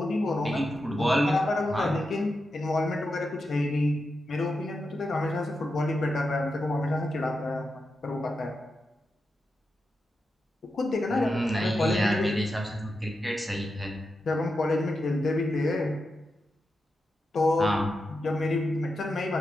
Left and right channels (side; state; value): both; normal; correlation 0.88